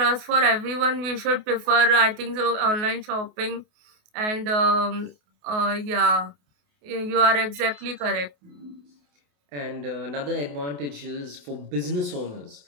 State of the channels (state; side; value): late; left; 28 ms